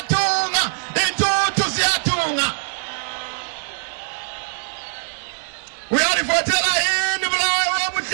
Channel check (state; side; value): silent; left; digital silence